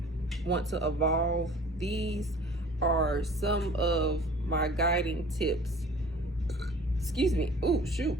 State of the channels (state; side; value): normal; both; correlation 0.47